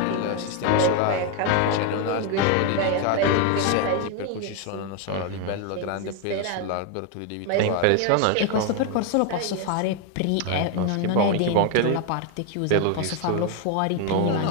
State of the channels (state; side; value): different; both; correlation 0.01